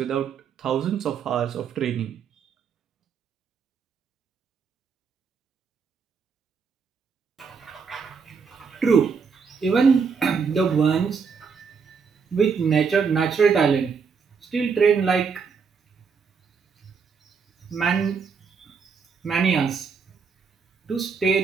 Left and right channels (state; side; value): quieter; left; 5.8 dB